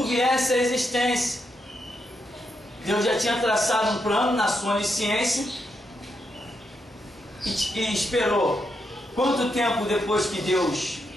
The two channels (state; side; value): normal; both; correlation 0.82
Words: viesse à existência. Deus já tinha traçado um plano na sua onisciência e esperou. Quanto tempo depois que Deus